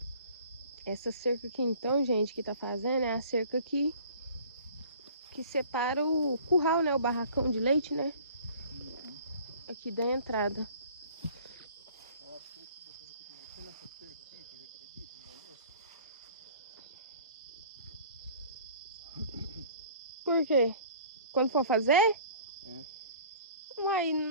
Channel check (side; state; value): both; inverted; correlation -0.48